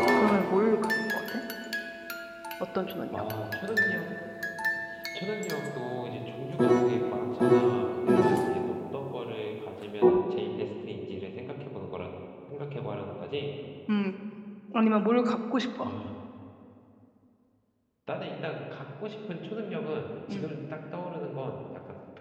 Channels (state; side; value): identical; both; correlation 1.00